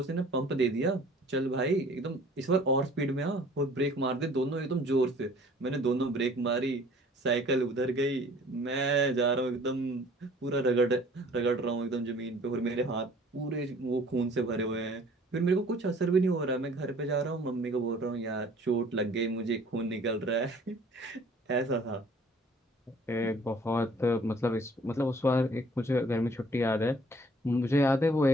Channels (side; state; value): both; normal; correlation 0.53